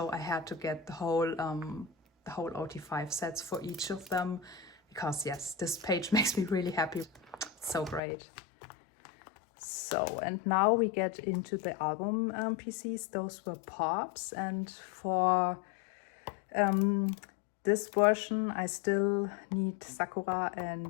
I had to get the whole OT5 sets for each of them, because yes, this page makes me really happy. It's so great. So, and now we get into the album PCs. Those were pops, and for this version I still need Sakura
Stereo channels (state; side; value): drops out; right; at 8.0 s